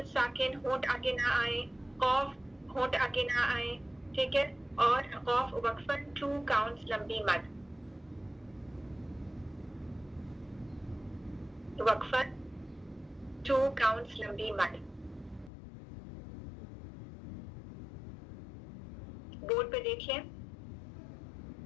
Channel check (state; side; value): drops out; right; at 15.5 s